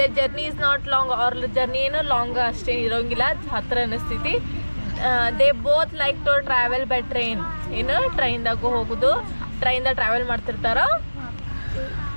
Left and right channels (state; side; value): inverted; both; correlation -1.00